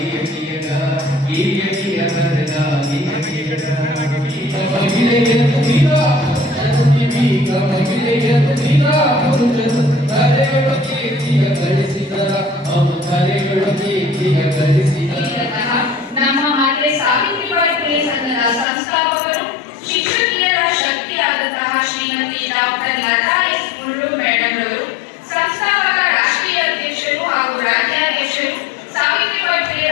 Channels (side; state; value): right; drops out; at 18.7 s